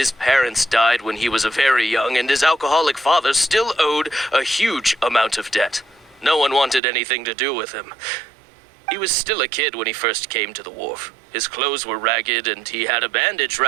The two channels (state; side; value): drops out; left; at 6.8 s